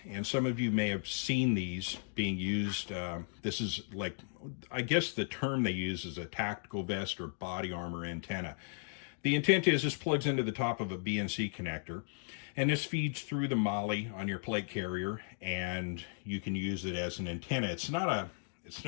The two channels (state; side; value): silent; right; digital silence